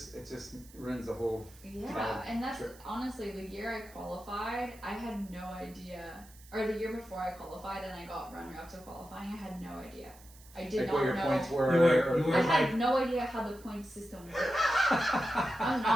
ruins the whole. Yeah, and that's honestly the year I qualified. I had no idea, or the year before I qualified and I got runner-up to qualifying. I had no idea. I did not what your know. Points were. You were I like, had no idea how the point system worked. I'm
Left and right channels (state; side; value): noise; right; hiss, 23 dB below the sound